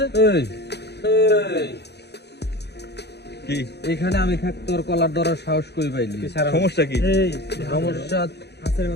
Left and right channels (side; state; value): right; late; 0.49 ms